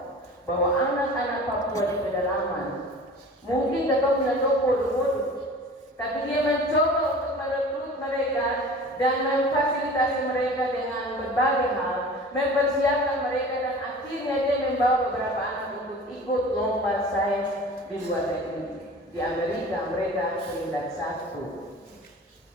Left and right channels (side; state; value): both; normal; correlation 0.40